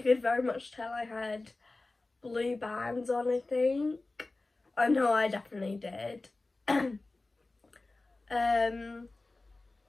could very much tell I had blue bands on, I think. I know I definitely did.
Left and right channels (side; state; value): right; quieter; 3.2 dB